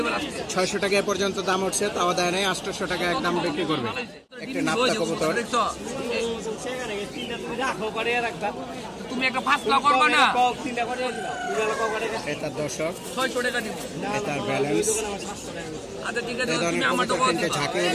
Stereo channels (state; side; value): identical; both; correlation 1.00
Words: আছে 600 টাকা পর্যন্ত দাম উঠছে, তাও দেয় নাই। 800 টাকা একদম বিক্রি করবে। একটি নাপ্তা কবুতর। দেখছো তুমি একটা ফাসলা করবে না। এটার দর্শক, 600 টাকা দিব। এটার ব্যালেন্স। আচ্ছা ঠিক আছে, এই ধরনের তুমি আমার তো কবুতর কিন্তু ঝাঁকে